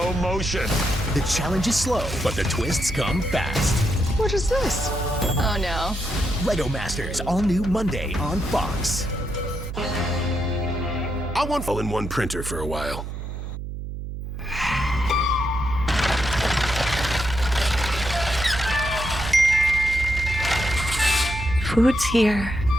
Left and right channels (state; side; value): noise; right; hum, 7 dB below the sound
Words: motion. The challenge is slow, but the twists come fast. What is this? Oh no. Lego Masters, all new Monday on Fox. I want all-in-one printer for a while. Food's here,